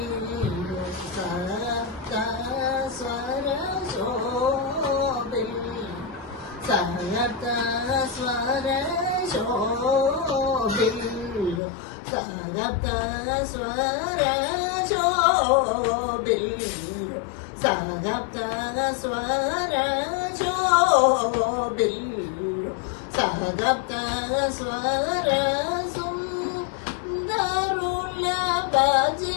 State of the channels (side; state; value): right; drops out; at 11.6 s